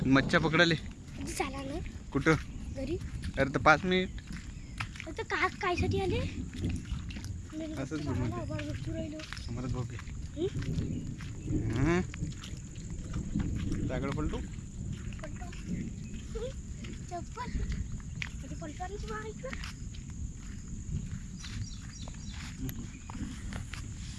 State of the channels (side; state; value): both; identical; correlation 1.00